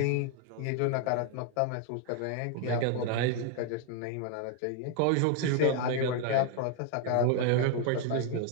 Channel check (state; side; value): different; both; correlation 0.00